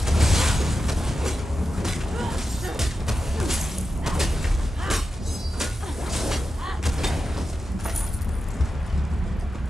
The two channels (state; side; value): normal; both; correlation 0.91